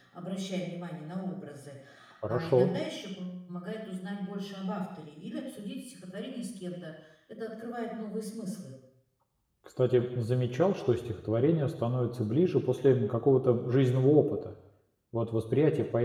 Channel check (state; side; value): identical; both; correlation 1.00